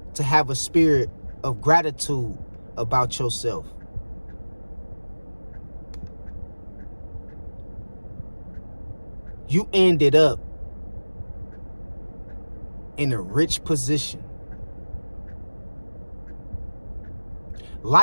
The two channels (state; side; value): inverted; both; correlation -1.00